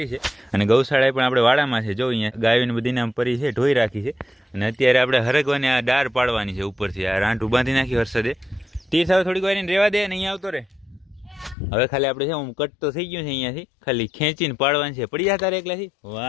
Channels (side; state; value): right; drops out; at 11.6 s